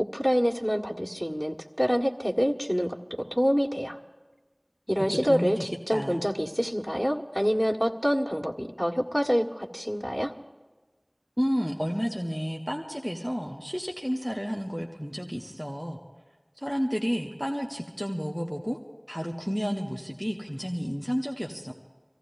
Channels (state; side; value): identical; both; correlation 1.00